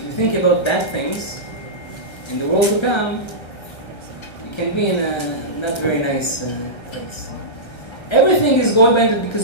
you think about bad things, in the world to come, you can be in a not very nice place. Everything is going by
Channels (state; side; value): late; right; 1.3 ms